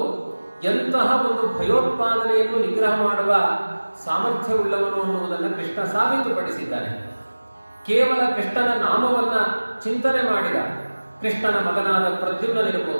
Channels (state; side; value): inverted; both; correlation -1.00